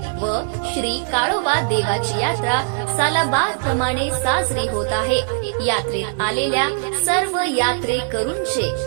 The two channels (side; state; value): left; silent; 65 dB below the other